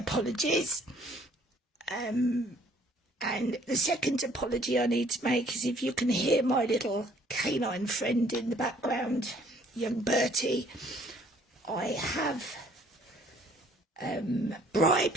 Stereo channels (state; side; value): normal; both; correlation 0.60